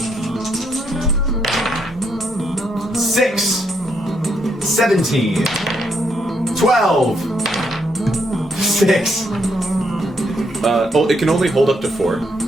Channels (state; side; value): normal; both; correlation 0.75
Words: 6, 17, 12, 6. Oh, it can only hold up to 4.